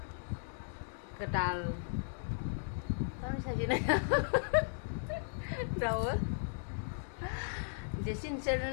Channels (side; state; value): right; silent; digital silence